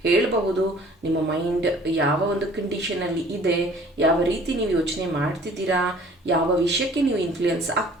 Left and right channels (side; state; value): both; normal; correlation 0.52